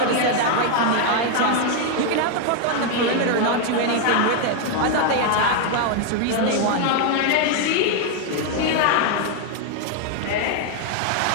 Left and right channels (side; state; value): both; different; correlation 0.01